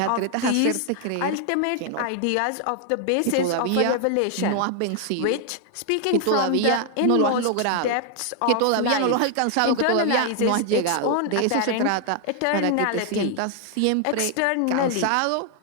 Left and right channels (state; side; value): different; both; correlation 0.00